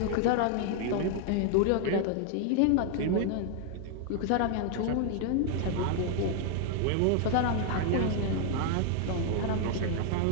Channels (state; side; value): different; both; correlation 0.00